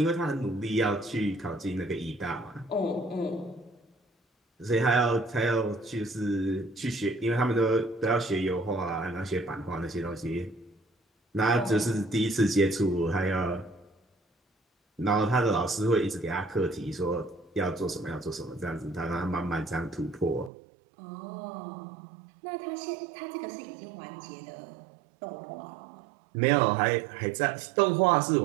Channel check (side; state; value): left; drops out; at 20.5 s